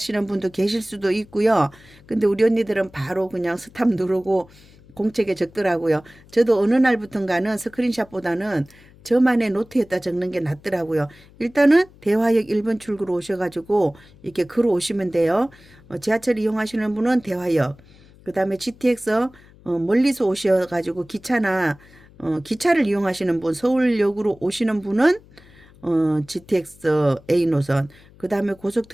분도 계실 수도 있고요. 근데 우리 언니들은 바로 그냥 스탑 누르고 공책에 적더라고요. 저도 어느 날부턴가는 스크린샷보다는 저만의 노트에다 적는 게 낫더라고요. 일단은 대화역 1번 출구로 오셔가지고 이렇게 걸어 오시면 돼요. 지하철 이용하시는 분은 대화역, 그 다음에 GTX 멀리서 오셔가지고 기차를 이용하시는 분, 서울역으로 오시는 분은 GTX A 노선, 그 다음에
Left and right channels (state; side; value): noise; left; hum, 25 dB below the sound